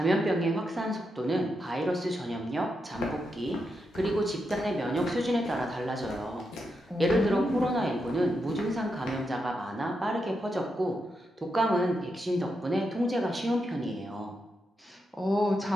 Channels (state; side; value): normal; both; correlation 0.85